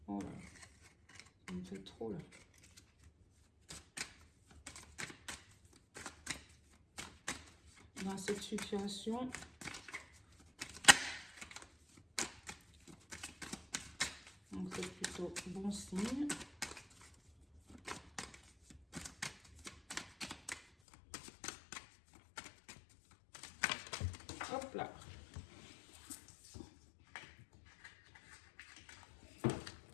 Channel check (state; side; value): drops out; right; at 20.7 s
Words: Oh là, ça me fait trop là. Dans cette situation, c'est plutôt bon signe. Hop là.